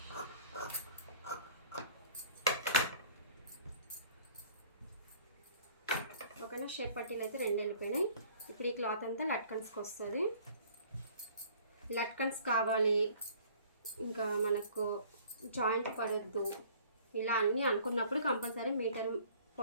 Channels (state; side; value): inverted; both; correlation -0.52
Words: ఓకేనా, షేప్ పట్టీలు అయితే 2 వెళ్ళిపోయినాయి. ఇప్పుడు ఈ క్లాత్ అంతా లట్కన్స్కి వస్తుంది. లట్కన్స్ కావాలి, ఇంకా మనకు జాయింట్ పడొద్దు, ఇలా అన్నీ అనుకున్నప్పుడు కంపల్సరీ మీటర్